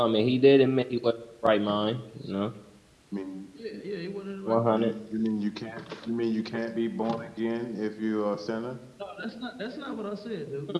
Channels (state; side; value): identical; both; correlation 1.00